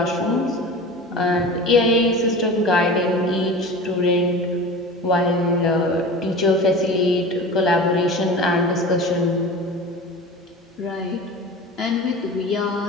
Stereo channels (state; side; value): normal; both; correlation 0.34